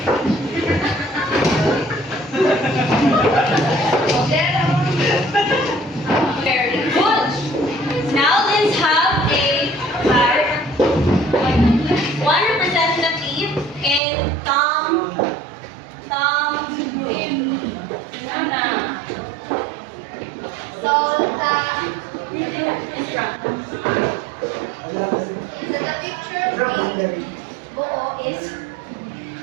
Jerry? Buo is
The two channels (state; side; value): drops out; left; at 14.0 s